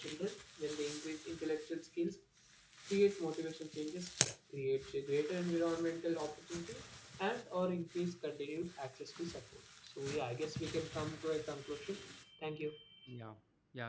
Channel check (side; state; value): both; identical; correlation 1.00